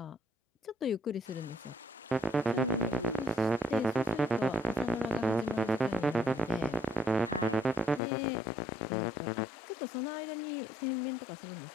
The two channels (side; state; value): right; drops out; at 8.0 s